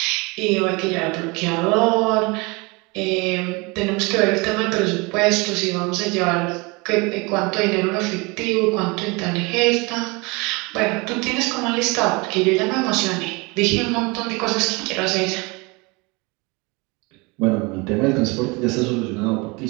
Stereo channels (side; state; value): left; quieter; 26.9 dB